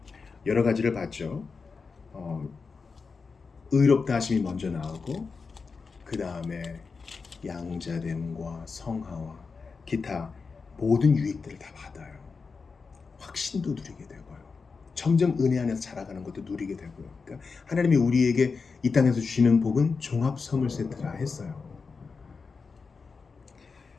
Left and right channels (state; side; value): quieter; right; 4.8 dB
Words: 여러 가지를 봤죠. 의롭다 하심이 먼저 나오고 그 다음에 양자됨과 성화와 기타 모든 유익들을 다 받아요. 확신도 누리게 되고요. 점점 은혜 안에서 자라가는 것도 누리게 되고요. 그러니까 하나님이 우리에게 이 땅에서 주시는 복은 종합 선물 세트라 했어요.